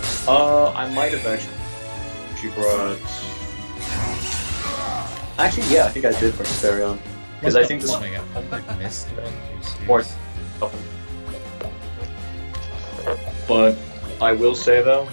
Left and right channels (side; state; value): both; inverted; correlation -1.00